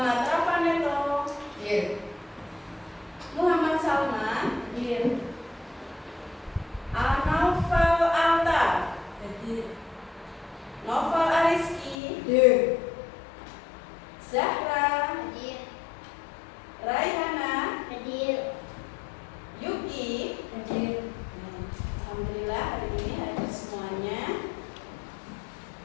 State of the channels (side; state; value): right; drops out; at 12.0 s